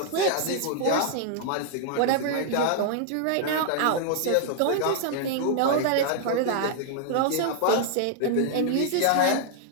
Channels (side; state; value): both; different; correlation 0.00